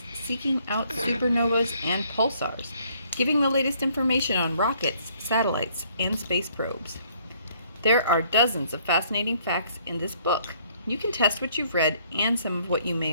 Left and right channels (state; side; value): inverted; both; correlation -0.64